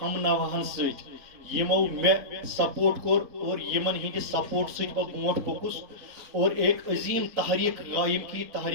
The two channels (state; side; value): late; left; 3.8 ms